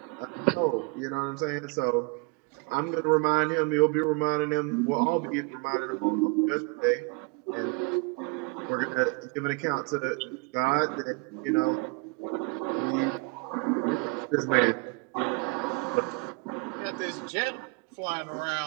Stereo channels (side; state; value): left; quieter; 29.6 dB